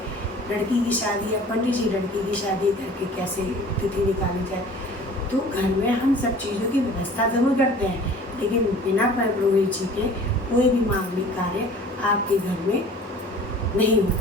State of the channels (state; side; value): normal; both; correlation 0.46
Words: लड़की की शादी है, पंडित जी लड़की की शादी करके कैसे तिथि निकाली जाए। तो घर में हम सब चीज़ों की व्यवस्था ज़रूर करते हैं, लेकिन बिना पुरोहित जी के कोई भी मांगलिक कार्य आपके घर में नहीं हो